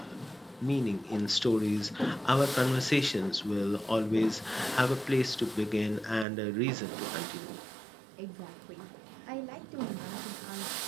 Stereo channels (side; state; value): left; drops out; at 6.2 s